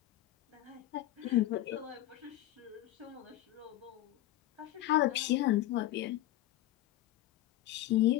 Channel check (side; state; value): right; quieter; 14.7 dB